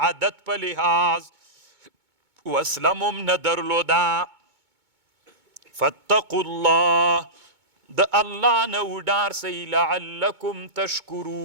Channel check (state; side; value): late; left; 2.2 ms